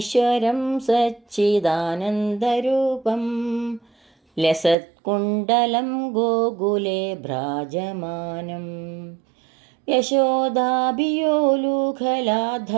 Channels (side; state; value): left; drops out; at 4.8 s